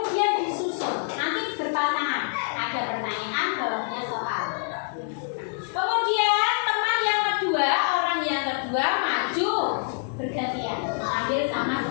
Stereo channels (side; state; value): right; silent; 61 dB below the other